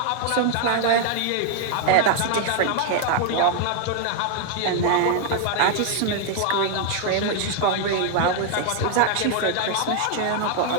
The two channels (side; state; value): both; different; correlation 0.00